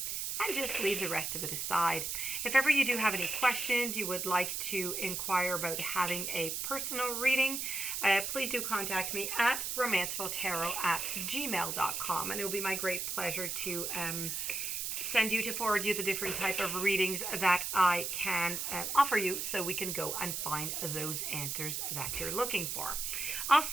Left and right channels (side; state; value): right; noise; hiss, 2 dB below the sound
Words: and just leave the rest of it aside. If ever you do have any questions, you would like to inquire about having a personal reading, please do contact me at romancefulltarot@gmail.com, and it will be my great pleasure to forward you the different type of readings that I can offer you, so we can go and find those answers that you're looking for.